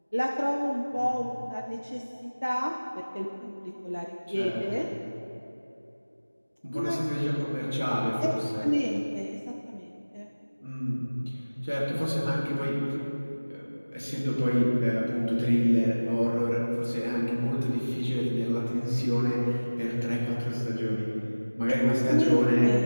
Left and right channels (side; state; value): both; inverted; correlation -1.00